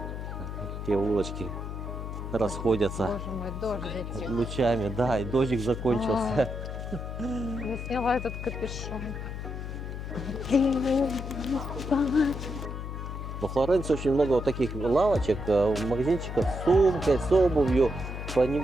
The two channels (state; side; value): noise; left; hum, 7 dB below the sound